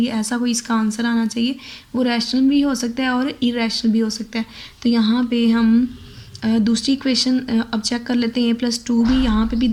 ऐसा कोई इसका आंसर आना चाहिए। वो रैशनल भी हो सकता है और इरेशनल भी हो सकता है। तो यहाँ पे हम दूसरी इक्वेशन अब चेक कर लेते हैं। a+2b, यहाँ पे भी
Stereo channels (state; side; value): identical; both; correlation 1.00